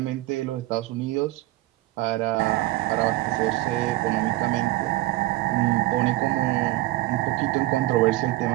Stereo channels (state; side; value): quieter; left; 17.6 dB